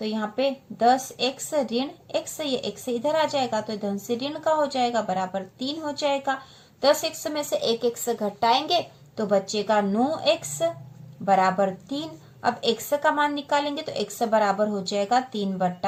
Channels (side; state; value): both; identical; correlation 1.00